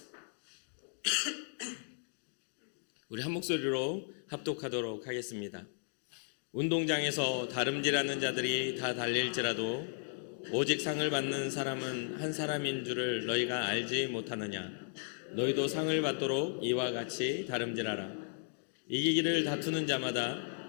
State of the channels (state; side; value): silent; right; digital silence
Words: 우리 한 목소리로 합독하도록 하겠습니다. 운동장에서 다름질하는 자들이 다 달릴지라도 오직 상을 받는 사람은 한 사람인 줄을 너희가 알지 못하느냐. 너희도 상을 받도록 이와 같이 다름질하라. 이기기를 다투는 자마다